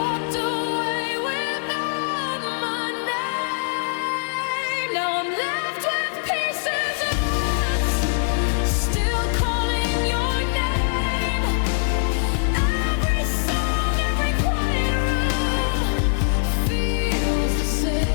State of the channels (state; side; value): silent; right; 64 dB below the other